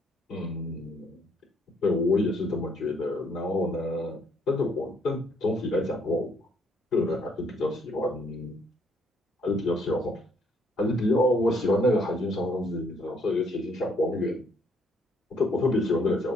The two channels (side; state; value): both; normal; correlation 0.67